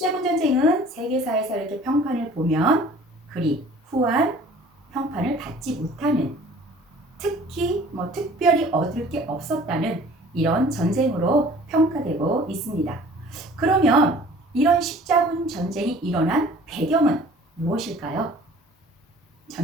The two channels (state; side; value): normal; both; correlation 0.49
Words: 전쟁은 세계사에서 이렇게 평판을 보면 그리 후한 평판을 받지 못하는, 특히 특별히 얻을 게 없었다는 이런 전쟁으로 평가되고 있습니다. 그러면 이런 십자군 전쟁이 일어난 배경은 무엇일까요?